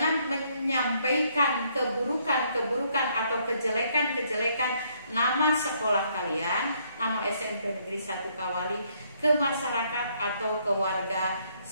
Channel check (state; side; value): inverted; both; correlation -0.69